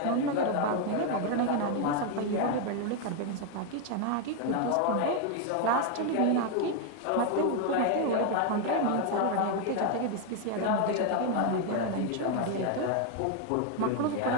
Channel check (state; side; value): different; both; correlation 0.01